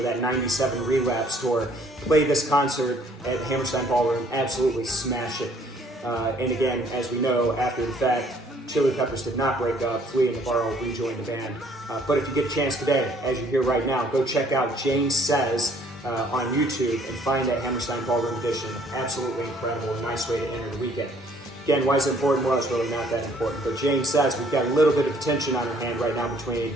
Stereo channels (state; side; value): normal; both; correlation 0.61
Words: that 97 Relapse tour, played this concert at the Hammerstein Ballroom, absolutely smashed it. And again, as we know, after the fact, Chili Peppers did not break up. Flea and Navarro rejoined the band. But if you get a chance today, as you hear right now, go check out Jane Says on YouTube and find that Hammerstein Ballroom edition. Absolutely incredible. A nice way to enter the weekend. Again, why is it important? Well, it's really not that important. But Jane Says we've got a little bit of tension on our hand right now between